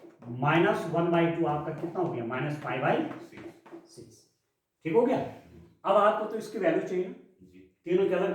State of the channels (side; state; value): both; identical; correlation 1.00